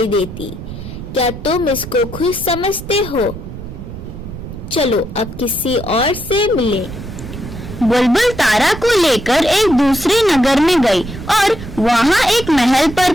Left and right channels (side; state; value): right; noise; rumble, 11 dB below the sound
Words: देती। क्या तुम इसको खुश समझते हो? चलो अब किसी और से मिलें। बुलबुल तारा को लेकर एक दूसरे नगर में गई और वहां एक महल